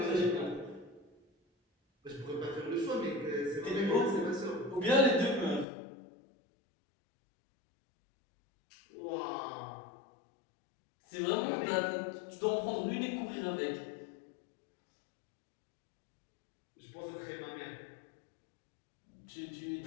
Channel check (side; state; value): right; drops out; at 5.7 s